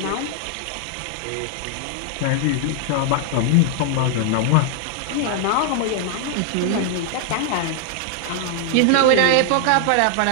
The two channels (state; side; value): different; both; correlation -0.01